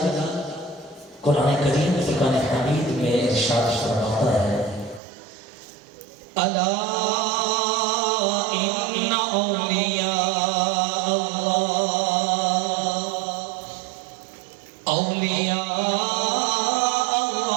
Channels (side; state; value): left; drops out; at 5.0 s